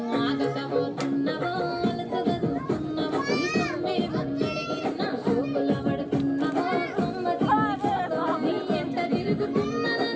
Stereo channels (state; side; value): identical; both; correlation 1.00